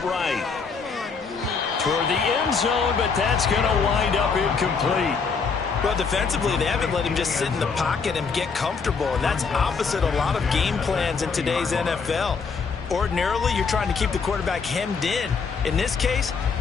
right. Toward the end zone, but that's going to wind up incomplete. Well, defensively, they haven't let him just sit in the pocket and get comfortable, and that's opposite a lot of game plans in today's NFL. Ordinarily, you're trying to keep the quarterback hemmed in. In this case,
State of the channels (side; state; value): right; quieter; 5.3 dB